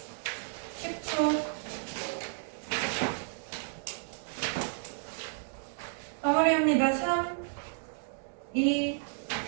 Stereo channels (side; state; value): left; silent; digital silence